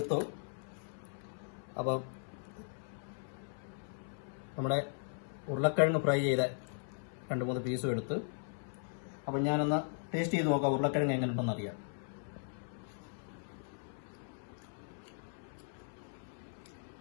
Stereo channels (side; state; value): right; silent; 53 dB below the other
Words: അപ്പം നമ്മുടെ ഉരുളക്കിഴങ്ങ് ഫ്രൈ ചെയ്ത 2-3 പീസും എടുത്ത്, അപ്പം ഞാനൊന്ന് ടേസ്റ്റ് ചെയ്ത് നോക്കാം ഉരുളക്കിഴങ്ങ് എങ്ങനെ ഉണ്ടെന്ന് അറിയാം.